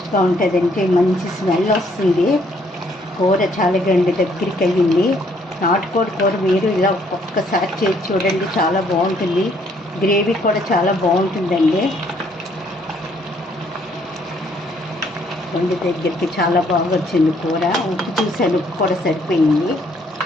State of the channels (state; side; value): normal; both; correlation 0.66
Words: ఉంటుందండి, మంచి స్మెల్ వస్తుంది. కూర చాలా దగ్గరికి అయ్యింది. నాటుకోడి కూర మీరు ఇలా ఒక్కసారి చేసి చూడండి, చాలా బాగుంటుంది. గ్రేవీ కూడా చాలా బాగుంటుందండి. వండి దగ్గరికి చాలా బాగా వచ్చింది కూర. ఉప్పు చూసాను, ఉప్పు కూడా సరిపోయింది.